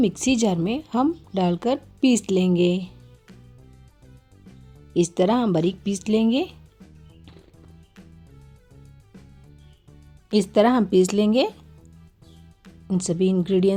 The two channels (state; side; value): identical; both; correlation 1.00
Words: जार में हम डालकर पीस लेंगे। इस तरह हम बारीक पीस लेंगे। इस तरह हम पीस लेंगे इन सभी